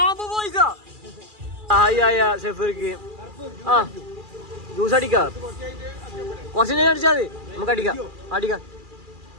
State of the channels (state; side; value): late; left; 2.4 ms